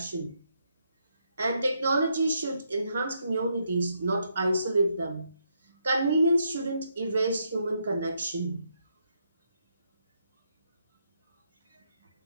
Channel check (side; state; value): both; inverted; correlation -0.77